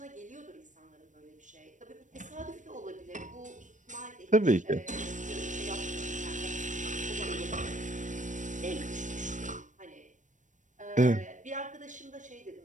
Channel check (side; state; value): left; late; 0.36 ms